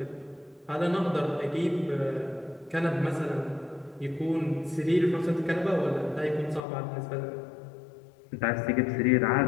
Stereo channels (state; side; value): drops out; right; at 6.7 s